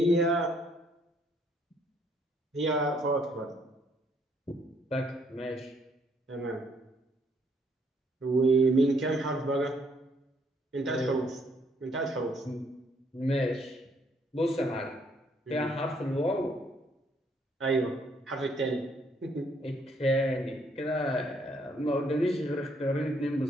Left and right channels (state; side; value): normal; both; correlation 0.68